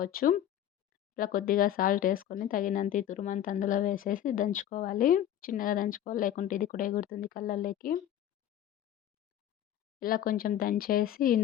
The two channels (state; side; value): quieter; right; 11.1 dB